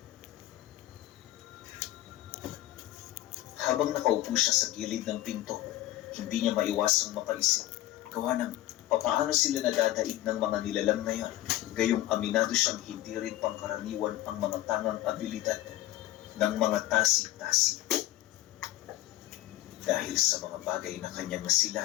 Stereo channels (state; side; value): quieter; right; 15.6 dB